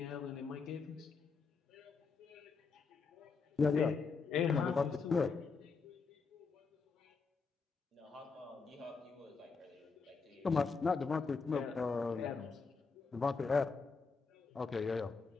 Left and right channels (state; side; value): quieter; right; 4.8 dB